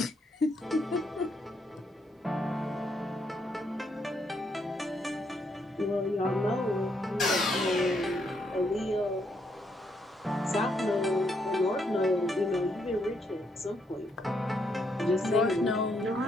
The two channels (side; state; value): both; normal; correlation 0.75